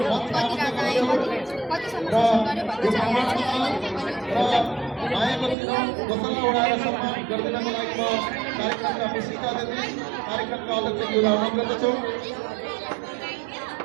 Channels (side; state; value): left; drops out; at 5.6 s